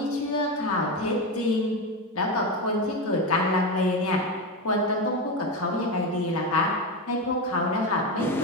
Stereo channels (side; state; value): both; normal; correlation 0.15